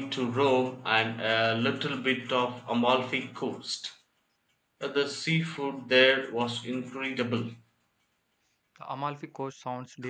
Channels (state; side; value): identical; both; correlation 1.00